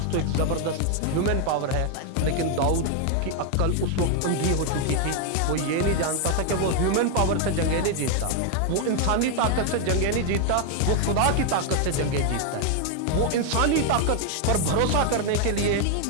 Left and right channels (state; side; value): different; both; correlation 0.00